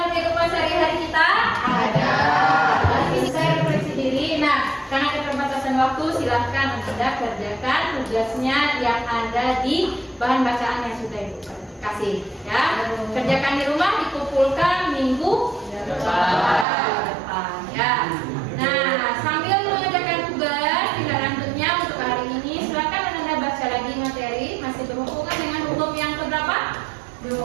kehidupan sehari-hari kita? Ada. Saya refleksi diri. Nah, karena keterbatasan waktu, silahkan Anda kerjakan tugasnya yang ada di bahan bacaan yang sudah Ibu kasih. Ya, kerjakan di rumah, dikumpulkan minggu depan. Ya. Nah, sambil mengerjakan tugas tinggal lanjutnya untuk hari ini, silahkan Anda baca lagi materi masih berhubungan dengan hukum yang keberapa?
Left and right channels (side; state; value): left; drops out; at 16.7 s